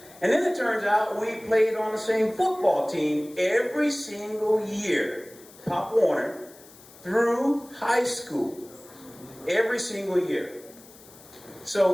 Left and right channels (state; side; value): noise; left; hiss, 22 dB below the sound